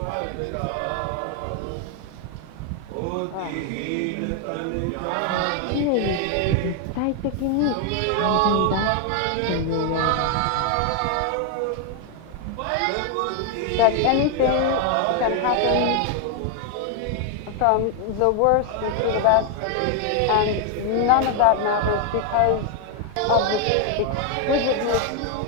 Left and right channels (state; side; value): different; both; correlation 0.00